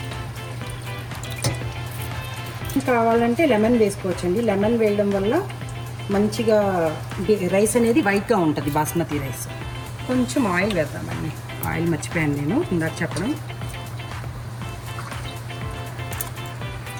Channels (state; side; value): identical; both; correlation 1.00